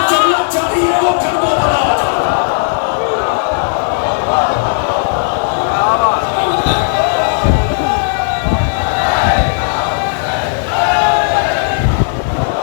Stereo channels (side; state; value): right; silent; digital silence